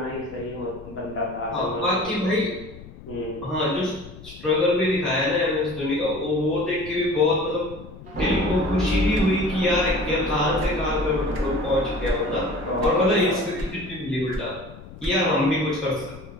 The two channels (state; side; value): noise; left; rumble, 17 dB below the sound